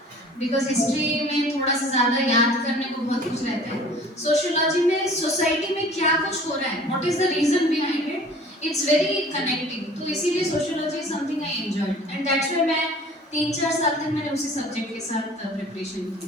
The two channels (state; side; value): normal; both; correlation 0.47